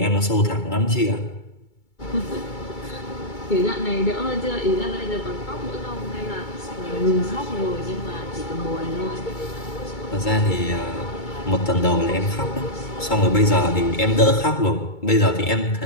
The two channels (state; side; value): late; right; 2.3 ms